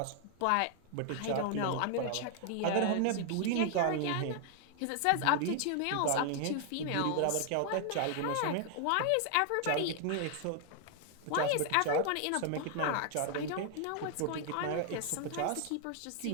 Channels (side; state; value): both; different; correlation 0.00